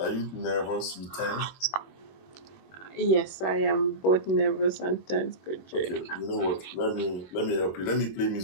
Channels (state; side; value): late; right; 21 ms